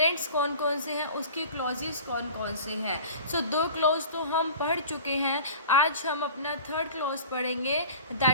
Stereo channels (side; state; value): both; inverted; correlation -0.40